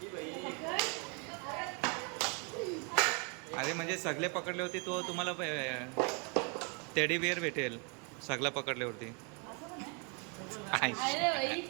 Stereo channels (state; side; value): quieter; left; 35.4 dB